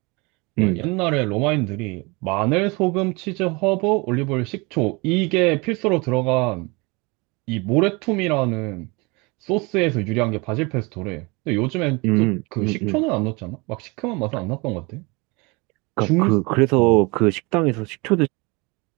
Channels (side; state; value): left; quieter; 27.1 dB